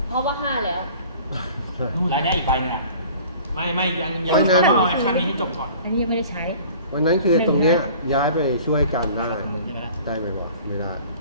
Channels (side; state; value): both; inverted; correlation -0.47